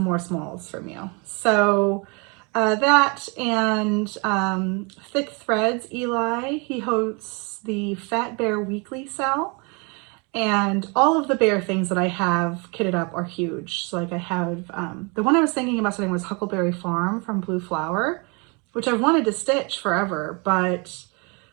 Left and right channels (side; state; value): left; quieter; 31.3 dB